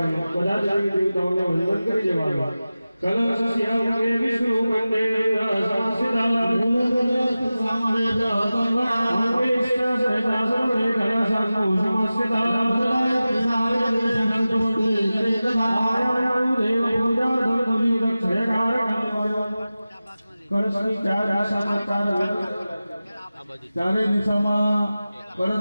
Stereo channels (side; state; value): both; inverted; correlation -0.95